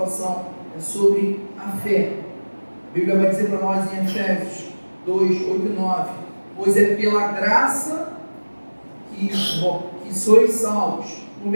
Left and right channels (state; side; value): inverted; both; correlation -1.00